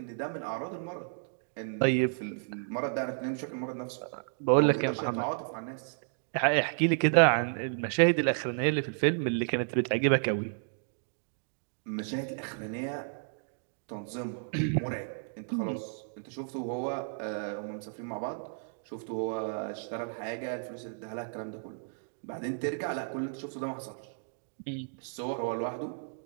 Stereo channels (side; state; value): left; silent; digital silence